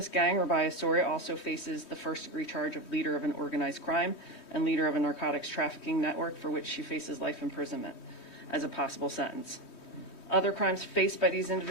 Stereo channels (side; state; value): right; late; 3.2 ms